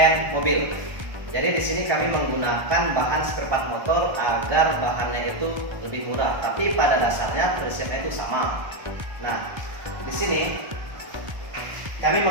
mobil. Jadi di sini kami menggunakan bahan spare motor agar bahannya itu lebih murah, tapi pada dasarnya prinsipnya itu sama. Nah, di sini kami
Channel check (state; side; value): late; left; 1.3 ms